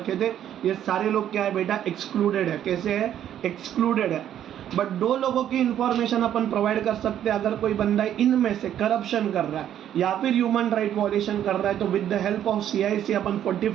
थे, ये सारे लोग क्या है बेटा, एक्सक्लूडेड है। कैसे है, एक्सक्लूडेड है। बट 2 लोगों की इंफॉर्मेशन अपन प्रोवाइड कर सकते हैं। अगर कोई बंदा इनमें से करप्शन कर रहा है या फिर ह्यूमन राइट वॉयलेशन कर रहा है, तो with the help of CIC upon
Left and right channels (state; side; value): quieter; left; 10.6 dB